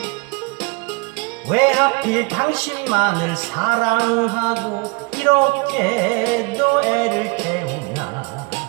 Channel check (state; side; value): quieter; left; 28.9 dB